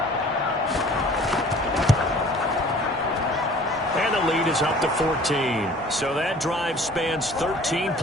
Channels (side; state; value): both; normal; correlation 0.49